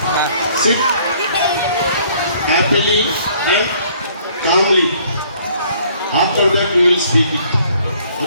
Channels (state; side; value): inverted; both; correlation -0.60